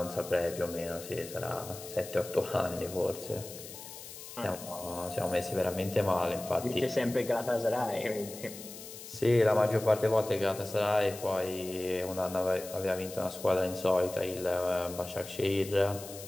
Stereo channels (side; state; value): left; noise; hiss, 13 dB below the sound